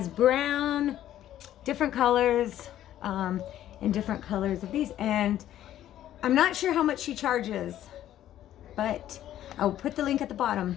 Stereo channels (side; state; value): right; quieter; 12.3 dB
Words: brown, different colors, and different colors of these. And I'm not sure how much she charges, but I'll put the link at the bottom